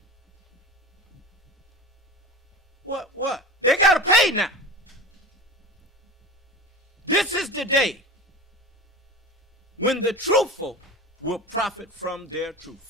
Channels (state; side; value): normal; both; correlation 0.32